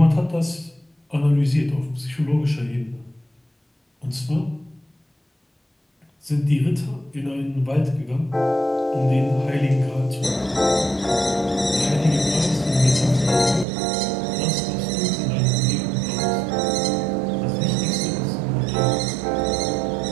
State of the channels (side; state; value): left; drops out; at 13.7 s